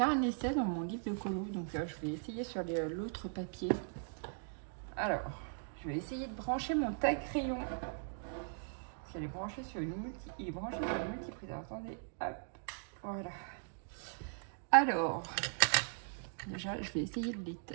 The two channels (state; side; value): silent; left; digital silence